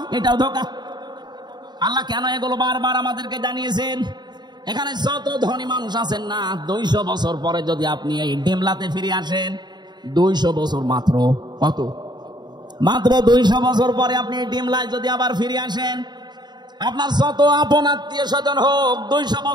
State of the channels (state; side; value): late; left; 0.21 ms